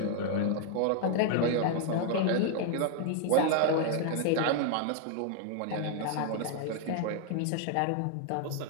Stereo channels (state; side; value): different; both; correlation 0.00